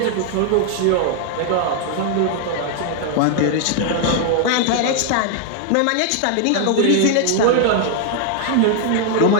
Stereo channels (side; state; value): both; different; correlation 0.00